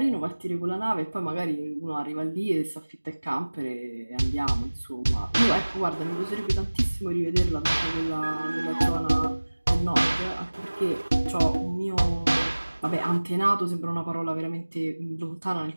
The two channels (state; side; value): inverted; both; correlation -1.00